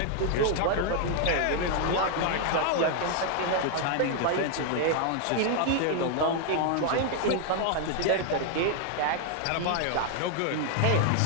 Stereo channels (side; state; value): both; different; correlation 0.00